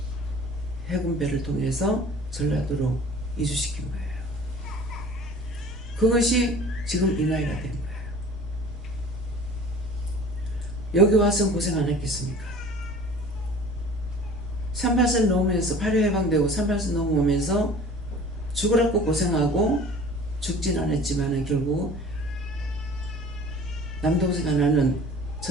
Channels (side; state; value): both; normal; correlation 0.44